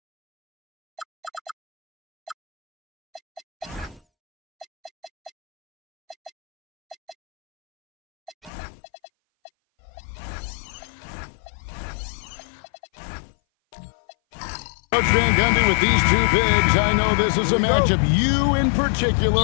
Coach Van Gundy, with these two bigs, I know this is a matchup you in particular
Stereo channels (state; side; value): drops out; right; at 8.5 s